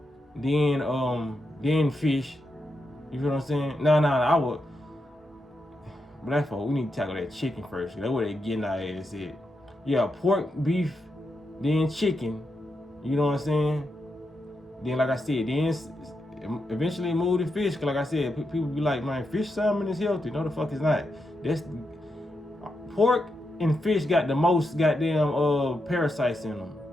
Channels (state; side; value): normal; both; correlation 0.85